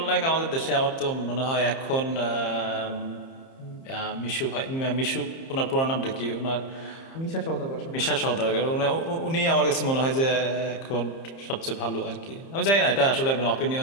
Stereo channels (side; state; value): right; late; 30 ms